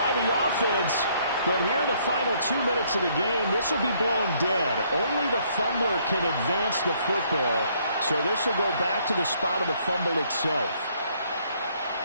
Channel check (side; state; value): both; inverted; correlation -0.66